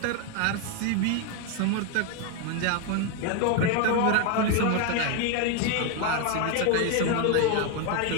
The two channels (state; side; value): different; both; correlation 0.01